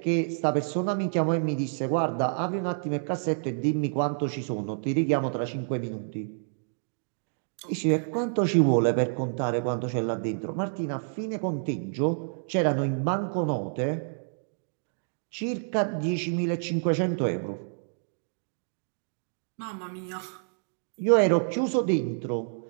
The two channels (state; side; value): silent; left; digital silence